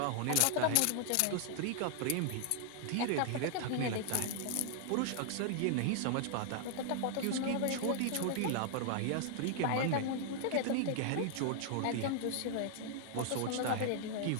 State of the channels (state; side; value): different; both; correlation -0.01